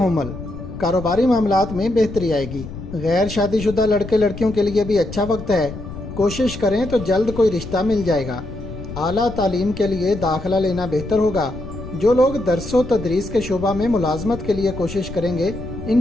کاروباری معاملات میں بہتری آئے گی۔ غیر شادی شدہ لڑکے لڑکیوں کے لیے بھی اچھا وقت ہے، کوشش کریں تو جلد کوئی رشتہ مل جائے گا۔ اعلیٰ تعلیم کے لیے داخلہ لینا بہتر ہوگا۔ جو لوگ درس و تدریس کے شعبہ میں ملازمت کے لیے کوشش کریں گے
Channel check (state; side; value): noise; left; rumble, 11 dB below the sound